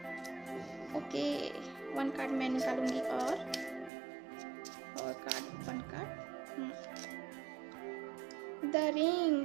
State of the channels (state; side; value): drops out; left; at 3.9 s